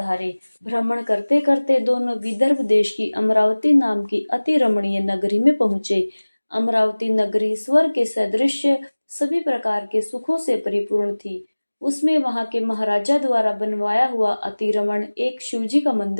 भ्रमण करते करते दोनों विदर्भ देश की अमरावती नाम की अति रमणीय नगरी में पहुंचे। अमरावती नगरी स्वर्ग के सदृश सभी प्रकार के सुखों से परिपूर्ण थी। उसमें वहां के महाराजा द्वारा बनवाया हुआ अतिरमण एक शिवजी का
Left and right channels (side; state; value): both; inverted; correlation -1.00